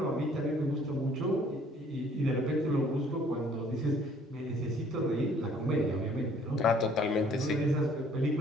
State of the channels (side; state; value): both; normal; correlation 0.58